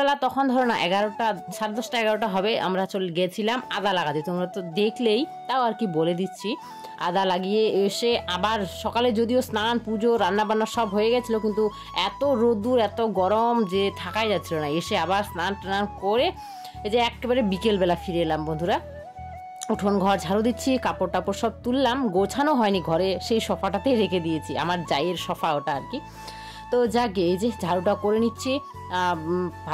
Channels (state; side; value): identical; both; correlation 1.00